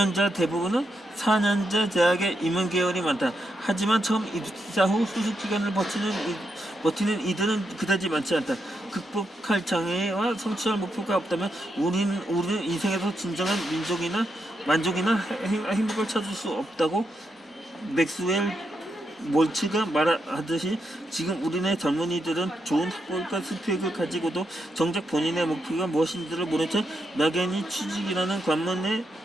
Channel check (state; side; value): normal; both; correlation 0.82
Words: 대부분은 4년제 대학에 임원 계열이 많다. 하지만 처음 입사 후 수습 기간을 버티는 이들은 그다지 많지 않다. 극복할 장애와 성취할 목표가 없다면 우리는 인생에서 진정한 만족이나 행복을 찾을 수 없다고 맥스웰 몰츠가 말하듯이 지금 우리네 젊은이들은 좋은 학벌과 스펙을 가지고도 정작 본인의 목표가 무엇인지를 모른 채 막연히 취직이라는 관문에